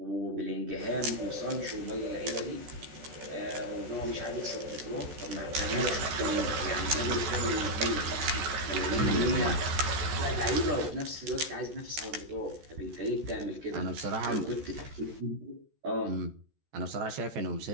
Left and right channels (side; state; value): left; late; 14 ms